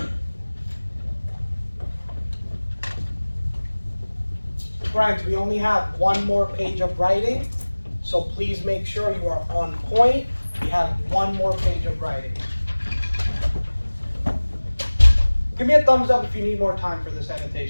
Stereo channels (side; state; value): both; inverted; correlation -1.00